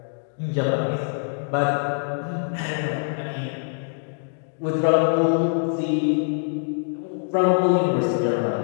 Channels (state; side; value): silent; right; digital silence